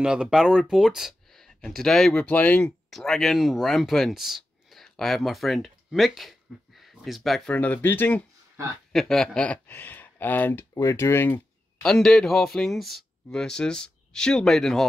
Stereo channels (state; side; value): normal; both; correlation 0.91